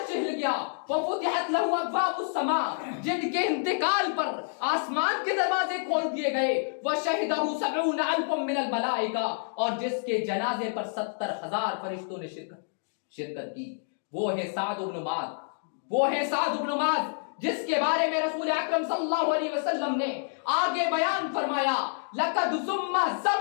ہل گیا، وفتحت لہ ابواب السماء، جن کے انتقال پر آسمان کے دروازے کھول دیے گئے، وشہدہ 70,000 من الملائکہ، اور جس کے جنازے پر 70,000 فرشتوں نے شرکت کی، وہ ہے سعد بن معاذ، وہ ہے سعد بن معاذ جس کے بارے میں رسول اکرم صلی اللہ علیہ وسلم نے آگے بیان فرمایا لقد ضم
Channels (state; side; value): silent; right; digital silence